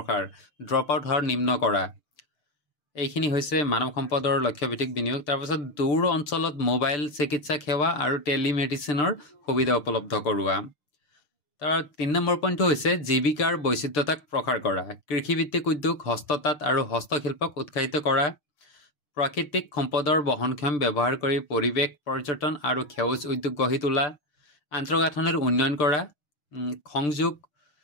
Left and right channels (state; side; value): late; right; 6.8 ms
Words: ড্ৰপ আউট হাৰ নিম্ন কৰা এইখিনি হৈছে মানৱ সম্পদৰ লক্ষ্যভিত্তিক বিনিয়োগ তাৰপাছত দূৰ অঞ্চলত মোবাইল চিকিৎসা সেৱা আৰু টেলিমেডিচিনৰ সুবিধা উপলব্ধ কৰোৱা তাৰ 3 নম্বৰ পইণ্টটো হৈছে জীৱিকাৰ বৈচিত্ৰতাক প্ৰসাৰ কৰা কৃষিভিত্তিক উদ্যোগ হস্ততাঁত আৰু হস্তশিল্পক উৎসাহিত কৰা প্ৰাকৃতিক সম্পদৰ বহনক্ষম ব্যৱহাৰ কৰি পৰিৱেশ পৰ্যটন আৰু সেউজ উদ্যোগ গঢ়ি তোলা আন্তঃগাঁথনিৰ উন্নয়ন কৰা সংযোগ